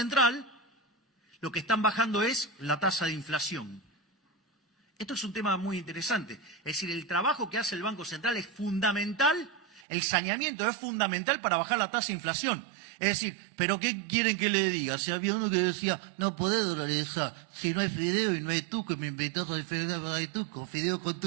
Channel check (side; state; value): left; drops out; at 9.9 s